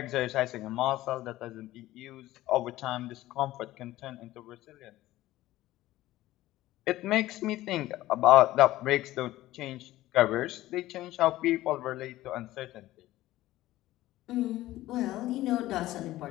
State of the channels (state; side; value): quieter; right; 16.0 dB